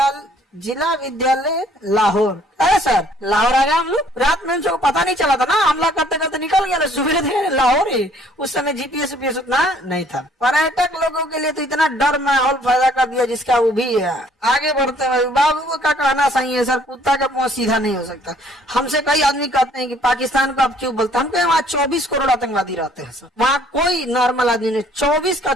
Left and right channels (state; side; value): normal; both; correlation 0.60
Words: जिला विद्यालय लाहौर। अरे सर लाहौर आ गया हम लोग, रात में उनको पता नहीं चला था ना, हमला करते करते निकल गया, सुबह थे लाहौर ही। उस समय GPS उतना नहीं था। पर्यटक लोगों के लिए तो इतना डर माहौल पैदा कर दिया जिसका वो भी है। आगे बढ़ते हैं, बाबू का कहना सही है सर, कुत्ता का मुंह सीधा नहीं हो सकता। हमसे कई आदमी कहते हैं कि पाकिस्तान को आप क्यों बोलते हैं, हम कहें वहाँ 24 करोड़ आतंकवादी रहते हैं सर, वहाँ कोई नॉर्मल आदमी नहीं,